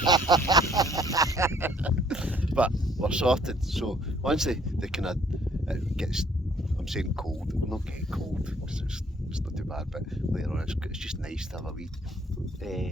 But we're sorted, so once they kind of it gets, I'm saying cold, we're not getting cold because it's not too bad, but later on it's just nice to have a wee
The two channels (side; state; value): both; normal; correlation 0.63